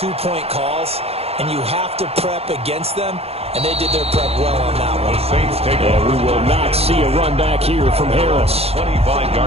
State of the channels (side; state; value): left; late; 0.29 ms